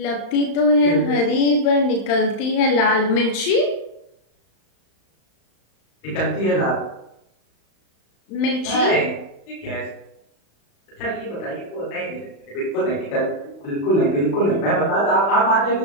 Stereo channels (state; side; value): late; right; 35 ms